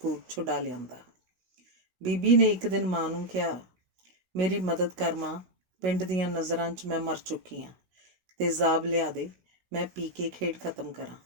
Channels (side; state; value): left; late; 16 ms